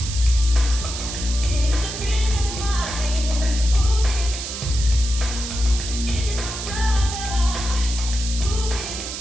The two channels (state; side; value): noise; right; hiss, 7 dB below the sound